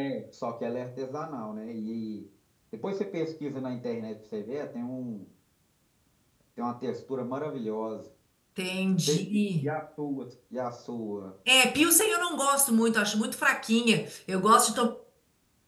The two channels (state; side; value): identical; both; correlation 1.00